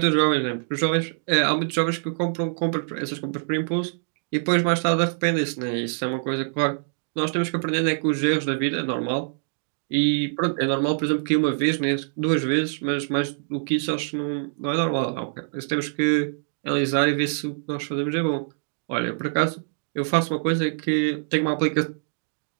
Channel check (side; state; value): left; silent; digital silence